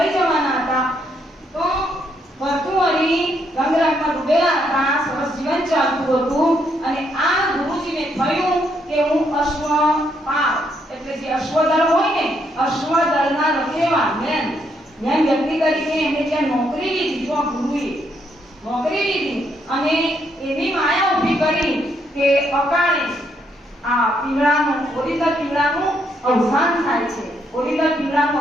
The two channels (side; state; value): both; normal; correlation 0.74